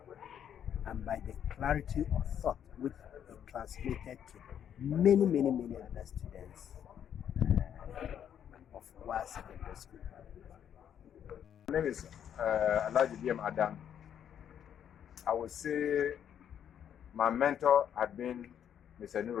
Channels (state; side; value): quieter; right; 9.2 dB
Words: and by the clarity of thought which he transmitted to many other students of our secondary school. My name is Alhaji Adam. I would say my mentor had been Mr.